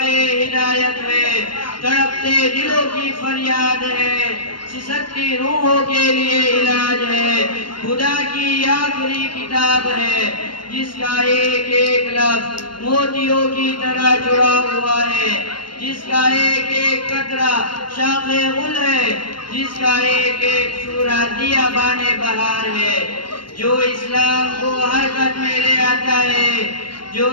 ہدایت ہے، تڑپتے دلوں کی فریاد ہے، سسکتی روحوں کے لیے علاج ہے، خدا کی آخری کتاب ہے، جس کا ایک ایک لفظ موتیوں کی طرح جڑا ہوا ہے، جس کا ایک ایک قطرہ شاخ غل ہے، جس کا ایک ایک سورہ دیا بانے بہار ہے، جو اسلام کو حرکت میں لے آتا ہے، جو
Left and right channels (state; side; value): late; right; 0.72 ms